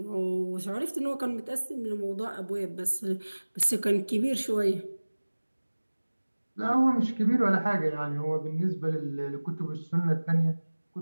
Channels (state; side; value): inverted; both; correlation -1.00